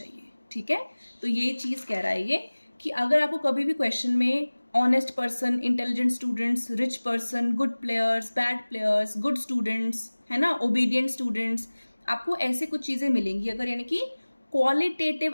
ठीक है। तो ये चीज़ कह रहा है ये कि अगर आपको कभी भी क्वेश्चन में honest person, intelligent students, rich person, good players, bad players, good students, है ना, ओबीडियंट स्टूडेंट्स, आपको ऐसे कुछ चीज़ें मिलेंगी अगर, यानी कि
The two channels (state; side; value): inverted; both; correlation -1.00